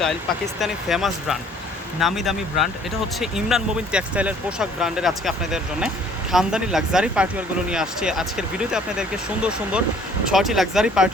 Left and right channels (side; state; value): both; normal; correlation 0.56